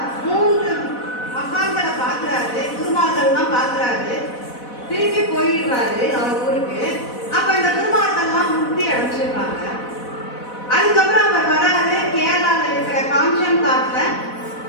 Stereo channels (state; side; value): late; right; 4.1 ms